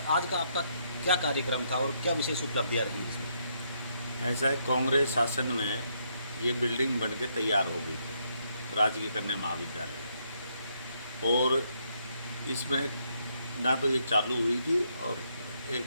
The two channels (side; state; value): both; inverted; correlation -0.75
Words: आज का आपका क्या कार्यक्रम था और क्या विशेष उपलब्धियाँ रही इसमें? ऐसा है, कांग्रेस शासन में ये बिल्डिंग बन के तैयार हो गई थी, राजकीय कन्या महाविद्यालय, और इसमें ना तो ये चालू हुई थी और